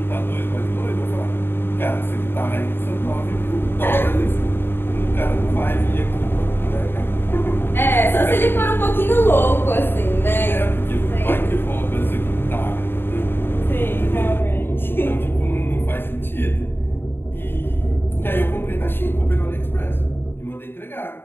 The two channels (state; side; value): late; right; 0.11 ms